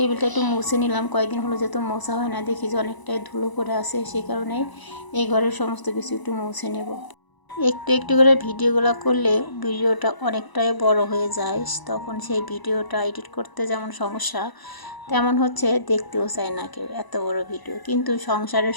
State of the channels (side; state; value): right; late; 1.0 ms